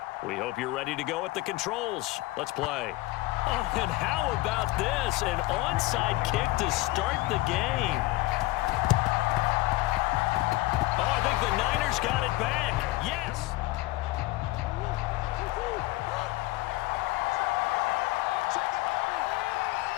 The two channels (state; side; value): quieter; right; 19.6 dB